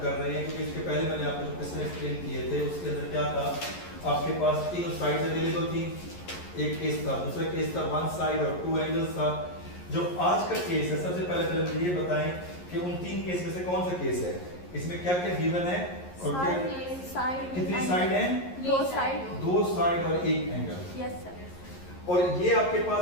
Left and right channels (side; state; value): right; late; 11 ms